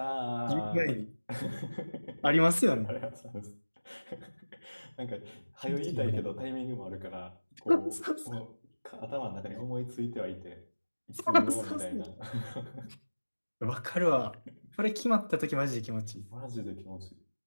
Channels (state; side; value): inverted; both; correlation -1.00